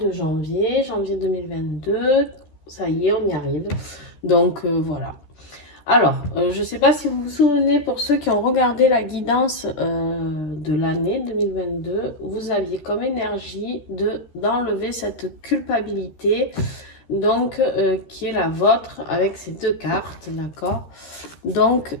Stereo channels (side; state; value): right; late; 13 ms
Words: janvier 2022. Ça y est, on y arrive. Donc voilà. Alors, je ne sais pas si vous vous souvenez, pour ceux qui ont regardé la guidance de l'année 2022, vous aviez comme énergie d'enlever cette culpabilité, donc qui est la vôtre avec ces deux cartes, d'accord? Donc